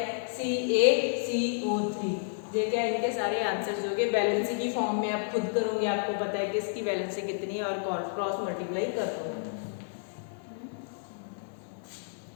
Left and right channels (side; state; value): right; silent; digital silence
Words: CaCO3। ये क्या इनके सारे आंसर्स होंगे। बैलेंसी की फॉर्म में आप खुद करोगे, आपको पता है कि इसकी बैलेंसी कितनी है और क्रॉस मल्टीप्लाई कर दो।